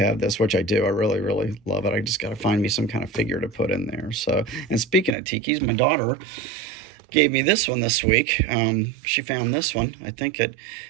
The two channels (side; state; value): left; drops out; at 5.2 s